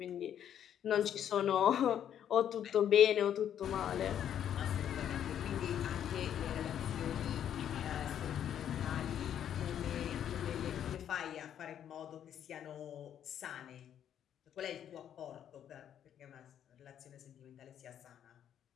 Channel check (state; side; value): quieter; right; 9.8 dB